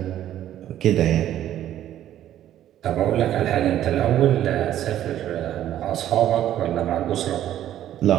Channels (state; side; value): quieter; left; 11.9 dB